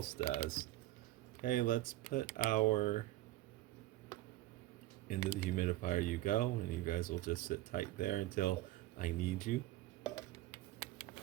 does. Okay, let's put our, into the humidifier you go, and you guys will just sit tight there until I need you.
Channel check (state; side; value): quieter; left; 16.1 dB